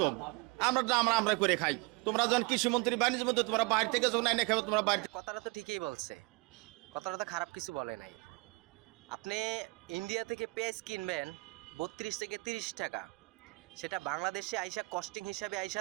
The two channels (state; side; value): quieter; left; 27.8 dB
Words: আমরা করে খাই। তোমরা যখন কৃষিমন্ত্রী বাণিজ্য মন্ত্রী তোমরা বাইরে থেকে যখন এনে খাবে তোমরা বাইরে। কথাটা তো ঠিকই বলছে, কথাটা তো খারাপ কিছু বলে নাই। আপনি ইন্ডিয়া থেকে পেঁয়াজ কিনবেন 32 থেকে 30 টাকা, সেটা বাংলাদেশে আইসা কস্টিং হিসাবে